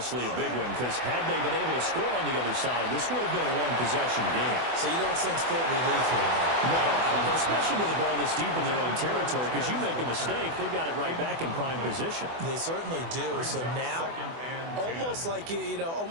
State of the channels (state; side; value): late; left; 24 ms